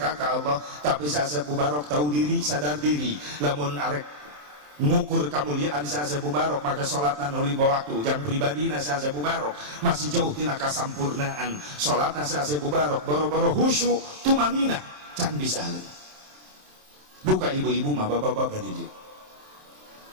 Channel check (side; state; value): left; late; 27 ms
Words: ke Allah tapi si Asep Mubarok tahu diri sadar diri lamun arek ngukur kemuliaan si Asep Mubarok maka sholatna 5 waktu yang pribadi si Asep Mubarok masih jauh tina kasampurnaan sholatna si Asep Mubarok boro-boro khusyuk tumanina can bisa duka ibu-ibu mah bapak-bapak didik